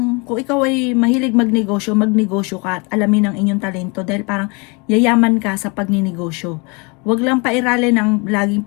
kung ikaw ay mahilig magnegosyo ka at alamin ang inyong talento dahil parang yayaman ka sa pagninegosyo. Huwag lang pairalin ang laging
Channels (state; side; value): quieter; right; 30.2 dB